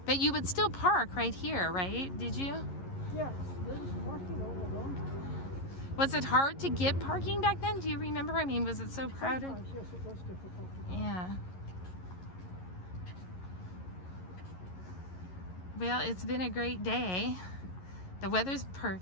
But you would still park right here, right? Did you? Yes. There was parking all along. Was it hard to get parking back then? Do you remember? I mean, was it so crowded? Sometimes, yes, it was difficult to park. Yeah. Well, it's been a great day. The weather's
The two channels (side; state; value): right; late; 11 ms